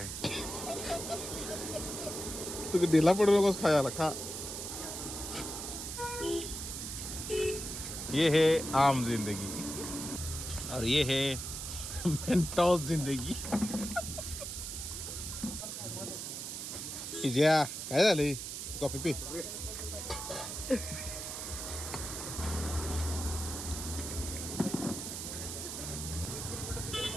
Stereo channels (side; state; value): right; noise; hiss, 6 dB below the sound